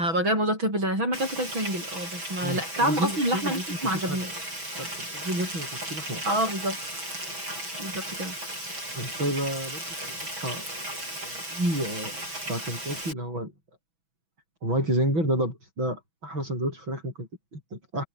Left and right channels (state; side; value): late; left; 6.1 ms